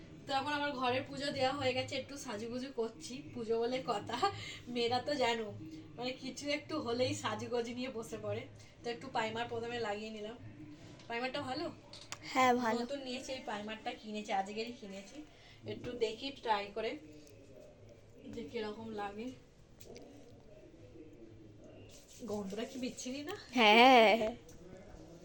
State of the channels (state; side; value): identical; both; correlation 1.00